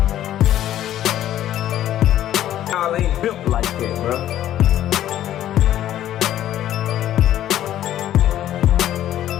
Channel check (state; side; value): quieter; right; 12.2 dB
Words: y'all ain't built like that, bro.